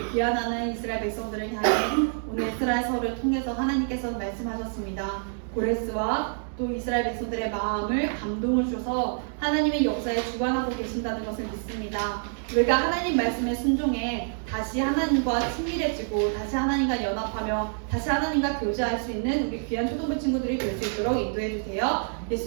귀환하는 이스라엘 백성들을 향해 오늘 에스라서를 통해서 하나님께서 말씀하셨습니다. 고레스와 또 이스라엘 백성들의 마음을 감동을 주셔서 하나님의 역사에 주관하고 계신다는 것을 믿습니다. 우리가 하나님 말씀에 순종해 다시 하나님과 친밀해지고 다시 하나님과 연합하며 다시 하나님과 교제할 수 있는 우리 귀한 초등부 친구들이 될 수 있도록 인도해 주세요.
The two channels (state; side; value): silent; left; 60 dB below the other